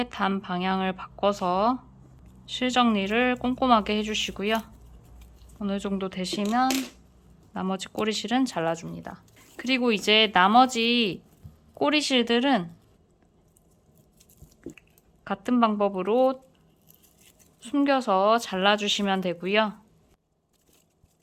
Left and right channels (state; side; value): identical; both; correlation 1.00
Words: 단 방향을 바꿔서 실 정리를 꼼꼼하게 해주시고요. 어느 정도 되시면 나머지 꼬리실은 잘라줍니다. 그리고 이제 나머지 꼬리실들은 같은 방법으로 숨겨서 잘라주시면 되고요.